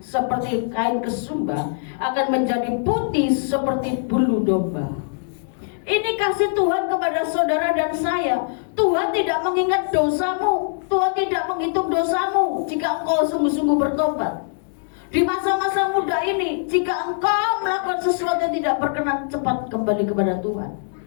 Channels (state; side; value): silent; right; 64 dB below the other